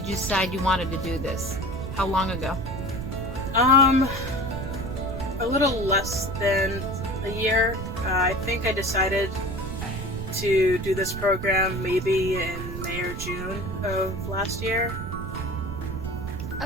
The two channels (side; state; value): right; noise; rumble, 6 dB below the sound